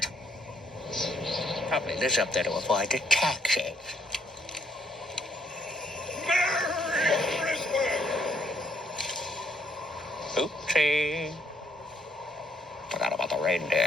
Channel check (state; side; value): normal; both; correlation 0.69